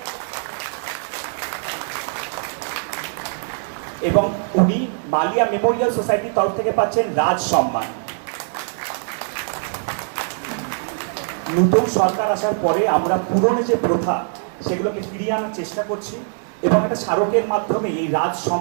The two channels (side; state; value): left; silent; digital silence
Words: এবং উনি মালিয়া মেমোরিয়াল সোসাইটির তরফ থেকে পাচ্ছেন রাজ সম্মান। নতুন সরকার আসার পরে আমরা পুরনো যে প্রথা সেগুলোকে ফিরিয়ে আনার চেষ্টা করছি, এবং একটা স্মারকের মাধ্যমে এই রাজ